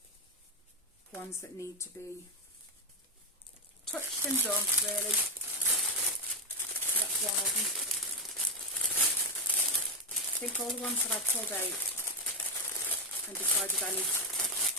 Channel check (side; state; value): both; normal; correlation 0.04